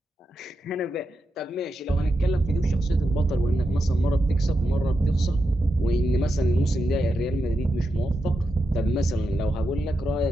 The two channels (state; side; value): normal; both; correlation 0.87